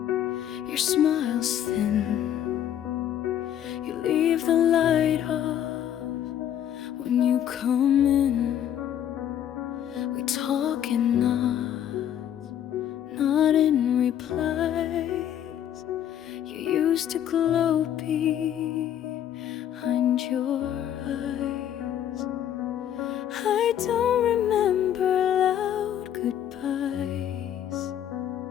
your smile's thin. You leave the light off when you come in. We talk in nods, not in replies. You used to glow behind your eyes. I don't remember loud goodbyes,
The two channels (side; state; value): right; quieter; 10.4 dB